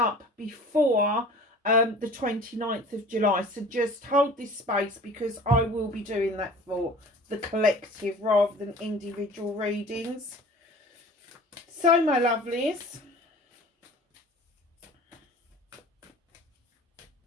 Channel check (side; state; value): both; normal; correlation 0.44